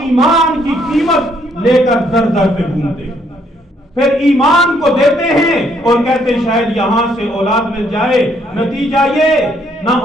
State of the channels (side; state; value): both; normal; correlation 0.69